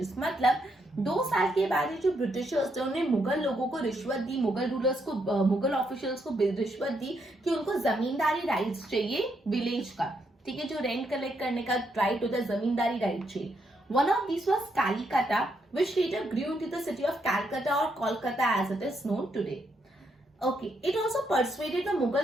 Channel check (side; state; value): both; normal; correlation 0.77